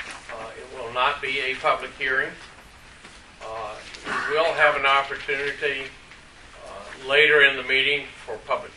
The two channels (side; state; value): both; identical; correlation 1.00